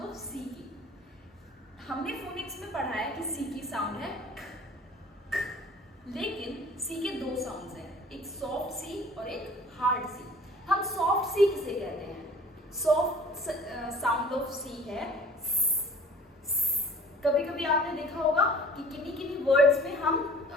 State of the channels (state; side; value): normal; both; correlation 0.47